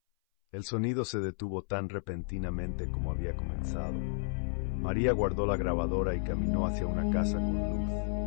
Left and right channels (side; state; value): right; silent; 56 dB below the other